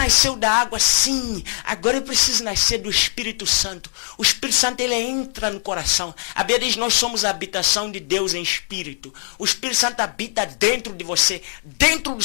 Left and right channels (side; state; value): right; silent; 65 dB below the other